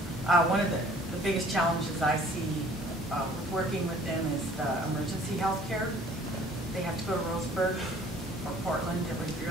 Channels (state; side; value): normal; both; correlation 0.54